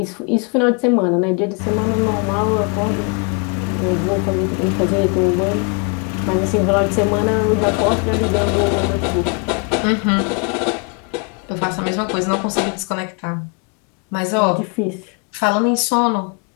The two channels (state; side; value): quieter; right; 35.5 dB